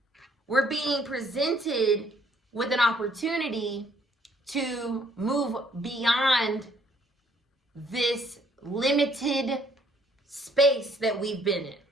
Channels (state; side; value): normal; both; correlation 0.64